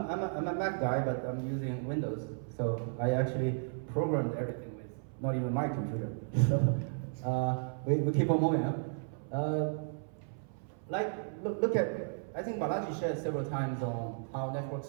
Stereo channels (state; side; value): silent; left; 55 dB below the other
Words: a Mac guy, but I'm using Windows, so I actually programmed everything with not even my computer. So, we keep on moving, huh? Look at, I think Balaji shared several times on how network